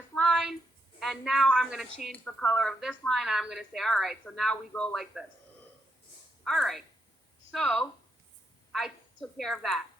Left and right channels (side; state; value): both; normal; correlation 0.80